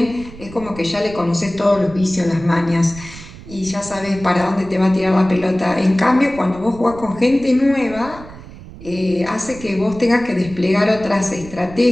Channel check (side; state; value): right; noise; rumble, 16 dB below the sound